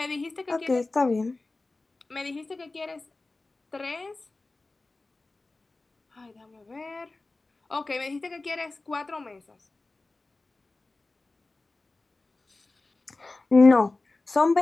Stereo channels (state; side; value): quieter; right; 3.3 dB